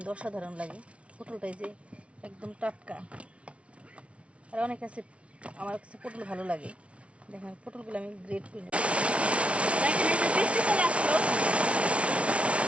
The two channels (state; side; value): late; left; 0.062 ms